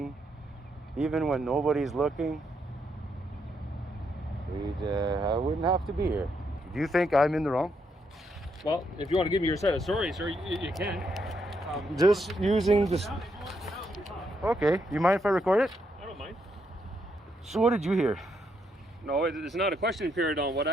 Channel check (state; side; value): normal; both; correlation 0.77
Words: even when nobody's looking, I wouldn't have to be here. Do you think I'm in the wrong? Well, if you want to give me your side of the story, sir, you can. Just using this. Okay, you mind if I record it? I don't mind. So what did you hear? No, it's not a question period on what